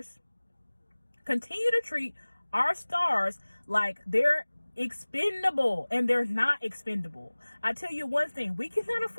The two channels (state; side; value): inverted; both; correlation -1.00